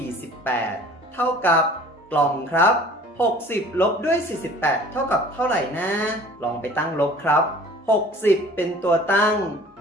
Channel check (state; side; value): normal; both; correlation 0.48